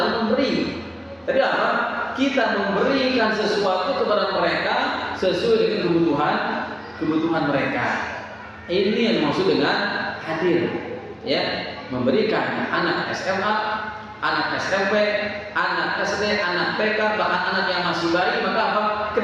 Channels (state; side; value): identical; both; correlation 1.00